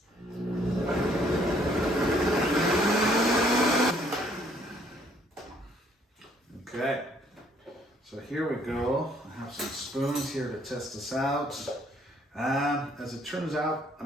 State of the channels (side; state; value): both; normal; correlation 0.64